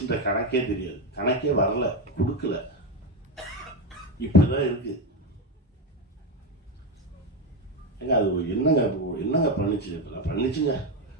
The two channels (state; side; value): normal; both; correlation 0.12